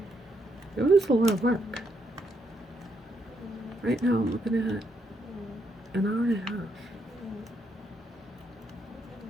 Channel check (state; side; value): normal; both; correlation 0.77